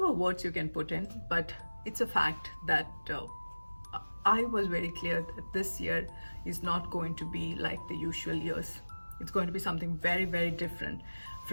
words you can put in, but it's a fact that I was very clear that this year is not going to be like the usual years. It's going to be something very, very different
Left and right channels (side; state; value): both; inverted; correlation -1.00